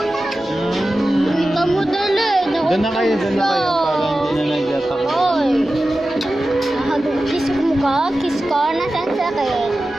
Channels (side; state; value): both; normal; correlation 0.94